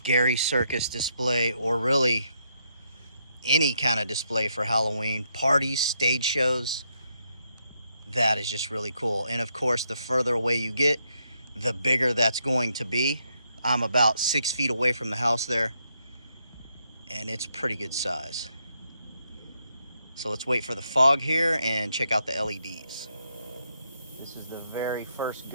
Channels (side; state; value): both; inverted; correlation -0.78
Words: circus display, or really any kind of display for Halloween, parties, stage shows. That is just really cool. And of course, the further away you get, the bigger that's going to be. I'm about 6 feet away from the house there, and it's pretty good size. So let's wait for the fog here and check out the LEDs. This is the very first